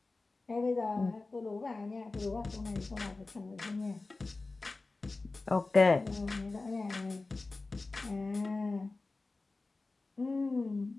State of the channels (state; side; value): quieter; right; 3.4 dB